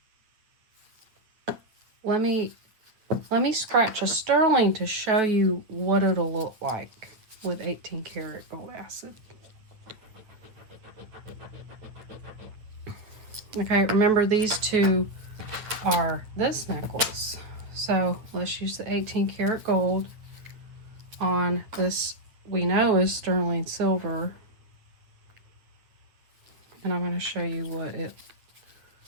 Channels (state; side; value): late; left; 8.6 ms